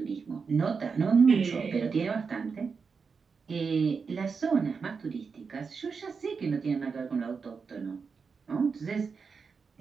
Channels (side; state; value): left; quieter; 5.3 dB